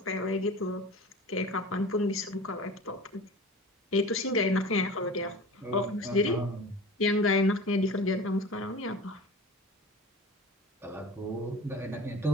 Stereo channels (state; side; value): normal; both; correlation 0.36